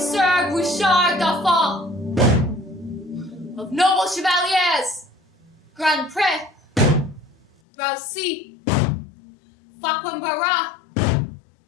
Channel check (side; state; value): right; drops out; at 7.5 s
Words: Bouchard Dauphin. Of noble chevaliers, Grand Pré, Roussy, Facquembarat,